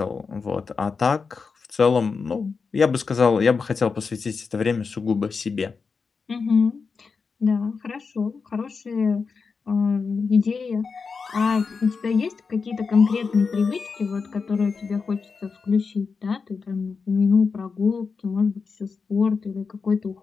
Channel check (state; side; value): quieter; right; 5.0 dB